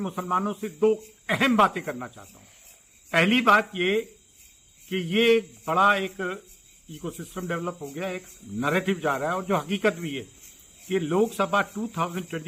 से दो अहम बातें करना चाहता हूं। पहली बात ये कि ये बड़ा एक इकोसिस्टम डेवलप हो गया, एक नैरेटिव जा रहा है और जो हकीकत भी है कि लोकसभा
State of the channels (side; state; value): both; identical; correlation 1.00